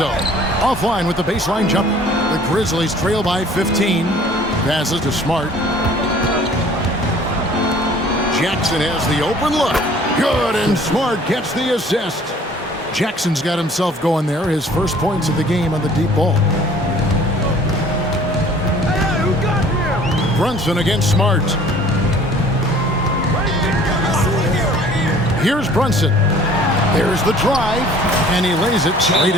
offline with the baseline jumper. The Grizzlies trail by 15. Passes to Smart. Jackson has the open look. Good, and Smart gets the assist. Jackson's got himself going there. His first points of the game on the deep ball. Brunson against Smart. Here's Brunson. There's the drive, and he lays it straight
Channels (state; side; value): normal; both; correlation 0.52